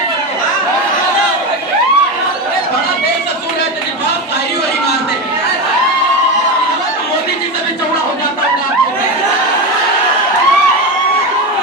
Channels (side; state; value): both; normal; correlation 0.18